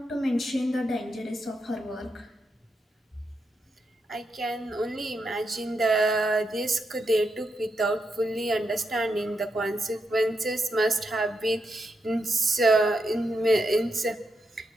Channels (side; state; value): both; normal; correlation 0.83